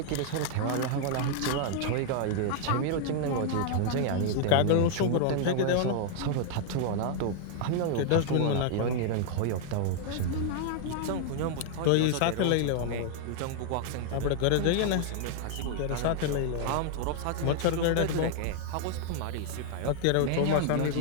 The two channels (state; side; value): different; both; correlation 0.00